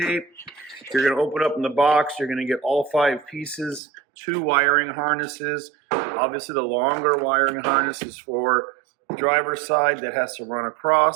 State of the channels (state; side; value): drops out; left; at 3.8 s